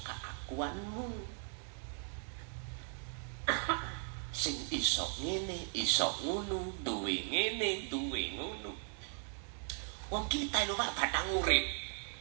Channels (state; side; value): silent; left; 52 dB below the other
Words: keakuanmu. Sing iso ngene, iso ngono, duwe ngene, duwe ngono. Wong kita lho Pak batang urip.